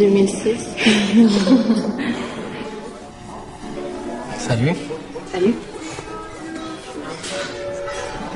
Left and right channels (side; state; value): both; identical; correlation 1.00